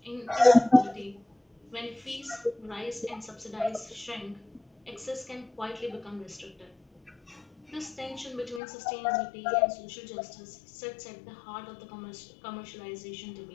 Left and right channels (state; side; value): drops out; right; at 8.6 s